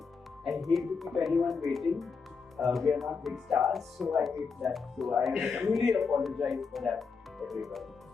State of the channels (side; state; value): right; quieter; 5.2 dB